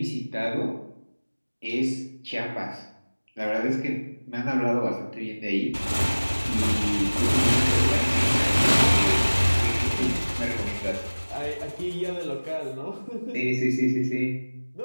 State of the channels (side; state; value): both; inverted; correlation -1.00